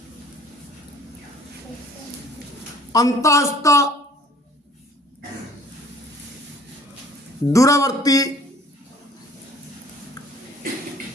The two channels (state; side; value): normal; both; correlation 0.54